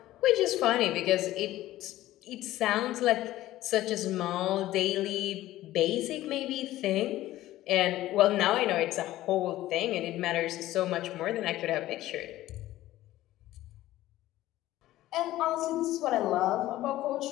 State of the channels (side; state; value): right; quieter; 15.3 dB